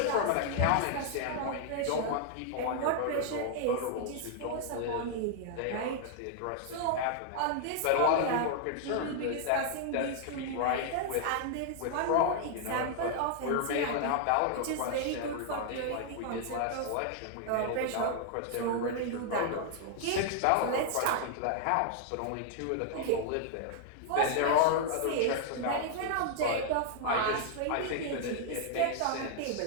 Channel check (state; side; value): different; both; correlation -0.01